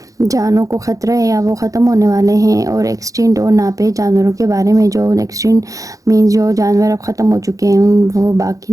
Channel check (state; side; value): late; left; 0.16 ms